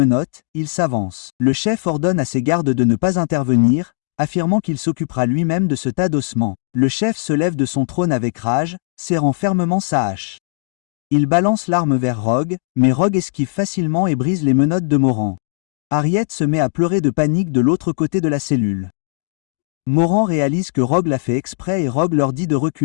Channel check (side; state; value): right; silent; digital silence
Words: il s'avance. Le chef ordonne à ses gardes de ne pas intervenir, affirmant qu'il s'occupera lui-même de ce tas d'ossements. Le chef se lève de son trône avec rage, serrant fermement sa hache. Il balance l'arme vers Rogue, mais Rogue esquive facilement et brise les menottes de Moran. Harriet se met à pleurer de panique de l'autre côté de la cellule. Moran réalise que Rogue l'a fait exprès et Rogue leur dit de